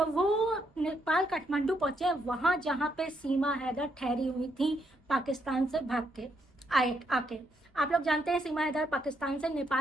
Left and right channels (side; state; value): both; normal; correlation 0.76